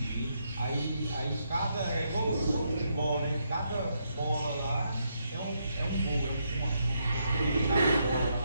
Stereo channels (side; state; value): both; inverted; correlation -0.78